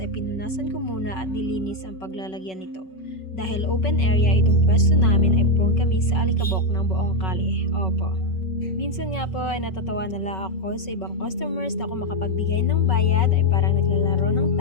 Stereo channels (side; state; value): right; late; 5.3 ms